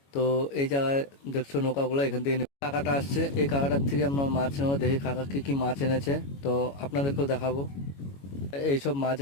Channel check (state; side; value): late; right; 22 ms